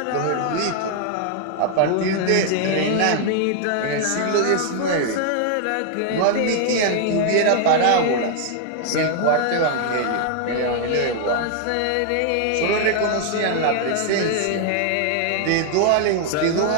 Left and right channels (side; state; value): both; different; correlation 0.00